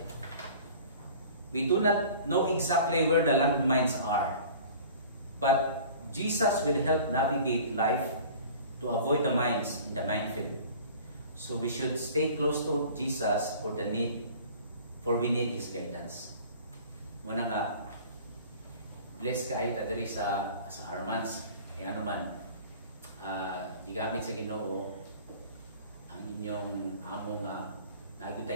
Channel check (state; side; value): inverted; both; correlation -0.45